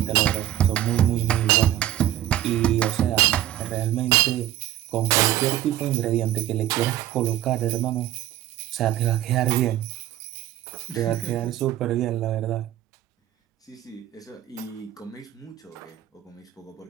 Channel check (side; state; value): left; quieter; 13.2 dB